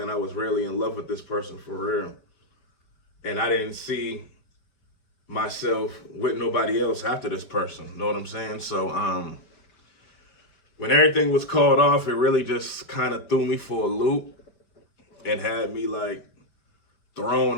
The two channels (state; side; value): late; right; 5.2 ms